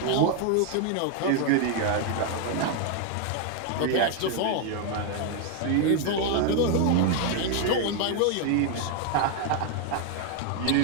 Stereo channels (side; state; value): both; different; correlation 0.00